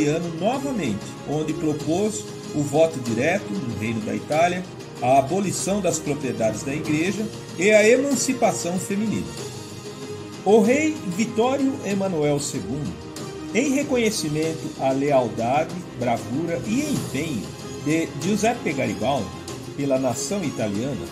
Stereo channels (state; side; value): identical; both; correlation 1.00